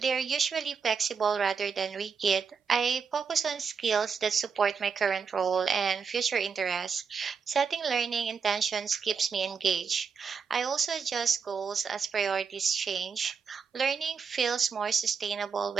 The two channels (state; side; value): quieter; left; 5.9 dB